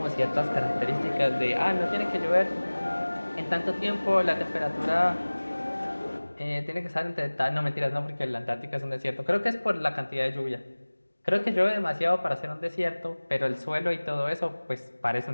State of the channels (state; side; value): inverted; both; correlation -1.00